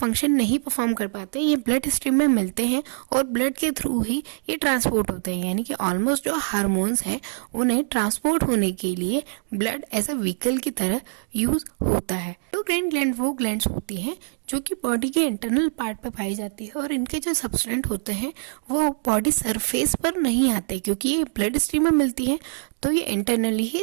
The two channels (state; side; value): silent; left; digital silence